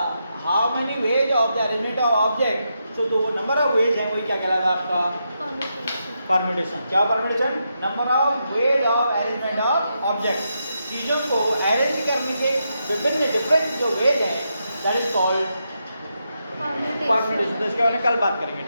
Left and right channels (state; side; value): inverted; both; correlation -0.83